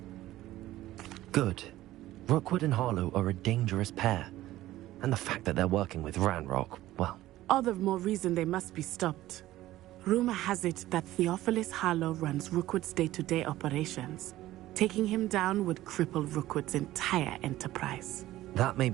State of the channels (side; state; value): left; quieter; 15.5 dB